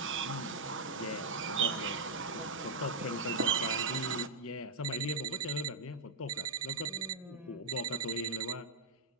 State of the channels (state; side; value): quieter; left; 3.6 dB